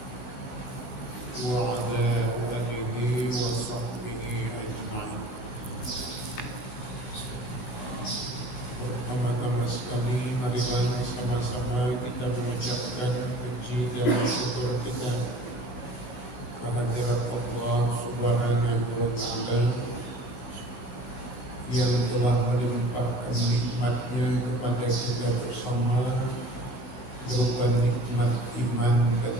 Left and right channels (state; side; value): late; right; 15 ms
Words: wa ala alihi wa sahbihi ajma'in. Pertama-tama sekali marilah sama-sama kita mengucapkan puji dan syukur kita kehadirat Allah Subhanahu wa Ta'ala yang telah melimpahkan nikmatnya kepada kita bersama berupa nikmat iman dan